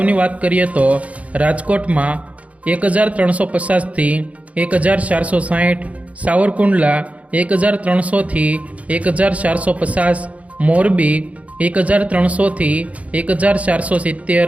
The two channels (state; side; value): late; left; 0.066 ms